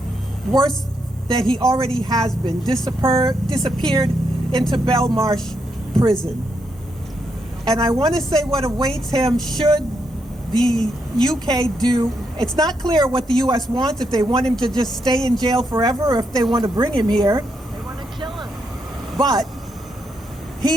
worse than he already has been, disappeared into Belmarsh prison. And I want to say what awaits him should the UK do. It's not clear what the US wants, if they want him to just stay in jail forever or if they want to bring him here. They want to kill him. But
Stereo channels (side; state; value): both; normal; correlation 0.80